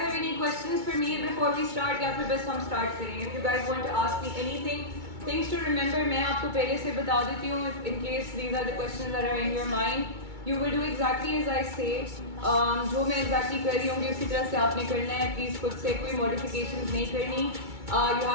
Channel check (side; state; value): left; late; 2.2 ms